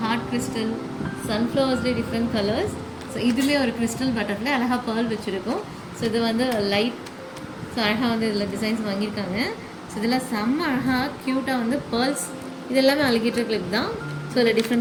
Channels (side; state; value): both; identical; correlation 1.00